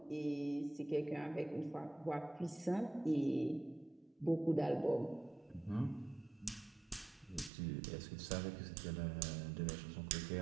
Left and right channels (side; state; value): left; drops out; at 7.5 s